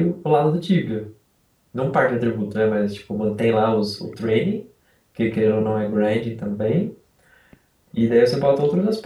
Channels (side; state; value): both; identical; correlation 1.00